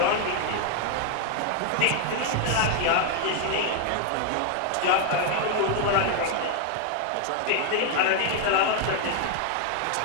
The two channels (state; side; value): different; both; correlation 0.00